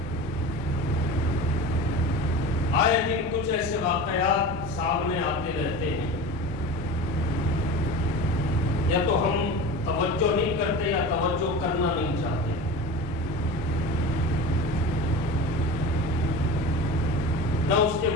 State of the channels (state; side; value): normal; both; correlation 0.32